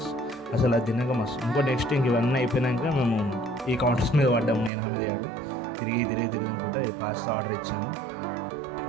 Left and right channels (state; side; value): drops out; left; at 4.7 s